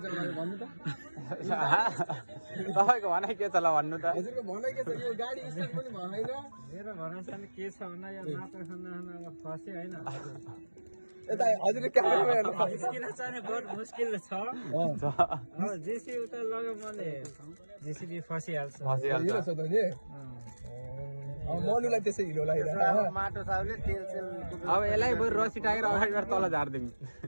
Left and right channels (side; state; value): both; inverted; correlation -1.00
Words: भन्नु त तपाईको भनाइ के छ ल भन्नु त हजुरको भनाइ के छ यो गाडी स्टार्ट पनि भएन मेरो भनाइ चाहिँ के छ भन्दा यो माटो खाना फसे हैन यता हजुरले क्यामेरामा हेर्नु निस्किन चाहिँ बहुत मुस्किल छ जेसी उता लग्यो मैले जेसीबी फसिहाल्छ हिलो छ त नि मनुलाई त्यसै हिलो लागिरहेको माटो साउले तेल सेल अब यसलाई बरु रसी टाकेर अगाडिबाट तल झार्दिउँ